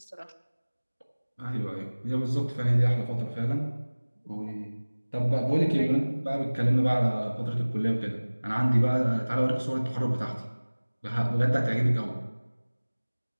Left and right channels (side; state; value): both; inverted; correlation -1.00